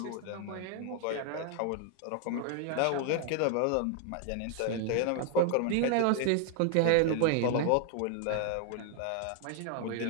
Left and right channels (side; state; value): both; different; correlation 0.00